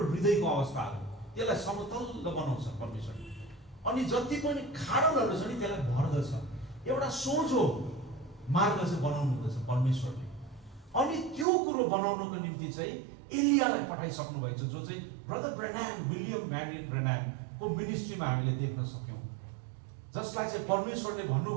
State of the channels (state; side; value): drops out; left; at 11.5 s